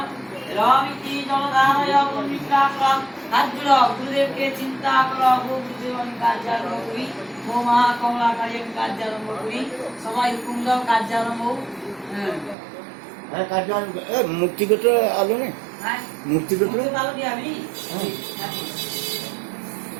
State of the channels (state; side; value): drops out; left; at 12.6 s